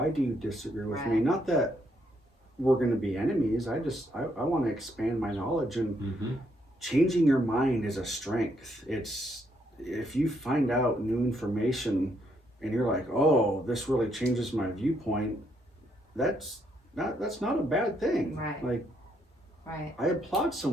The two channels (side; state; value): both; normal; correlation 0.74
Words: do you disagree with me? Right. Not that we're going to be enemies. I want to expand my knowledge, and changing your mind is a strength. It's if you find out new information and you're like, oh, this really changes my viewpoint, that's not a bad thing. Right. Like, Right. I applaud